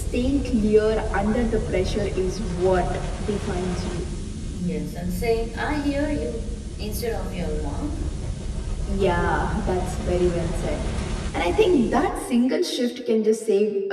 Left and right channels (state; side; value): identical; both; correlation 1.00